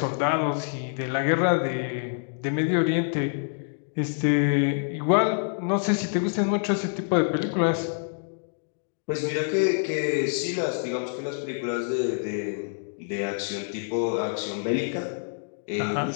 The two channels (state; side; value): silent; right; digital silence